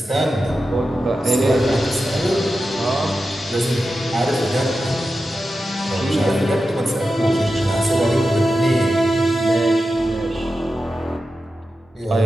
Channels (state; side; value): normal; both; correlation 0.91